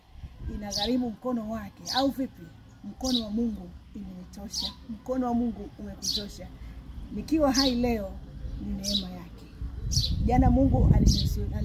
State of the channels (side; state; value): both; identical; correlation 1.00